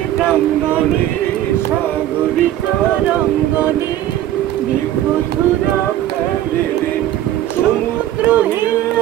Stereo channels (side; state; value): left; quieter; 12.9 dB